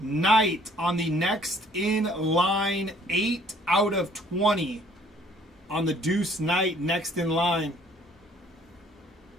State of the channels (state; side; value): normal; both; correlation 0.59